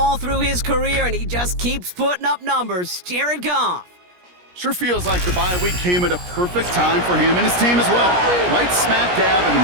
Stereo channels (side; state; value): left; late; 17 ms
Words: through his career, and he just keeps putting up numbers. Jared Goff. Sure feels like the bye week came at a perfect time for him and his team as well. Right smack dab in